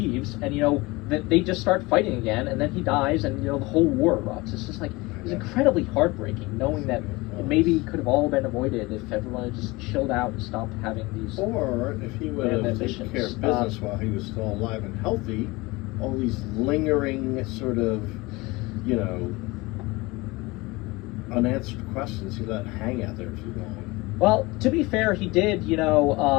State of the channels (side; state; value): right; quieter; 22.8 dB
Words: and that they just start fighting again, and then he dies, and the whole war erupts. It's just it's incredibly heartbreaking knowing that it maybe could have all been avoided if everyone had just chilled out and stopped having these. Or if he would have taken care of business while he was still alive and healthy, all these lingering sort of, unanswered questions he let hang out there too long. Well, to be fair, he did,